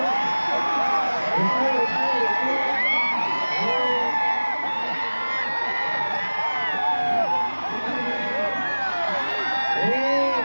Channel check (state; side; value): inverted; both; correlation -1.00